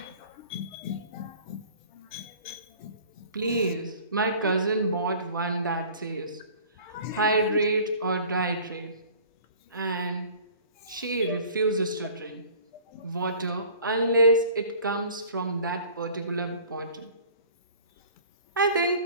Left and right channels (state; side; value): inverted; both; correlation -0.48